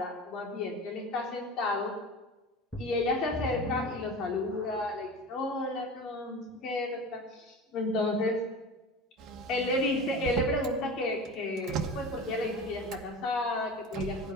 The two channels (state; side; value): normal; both; correlation 0.32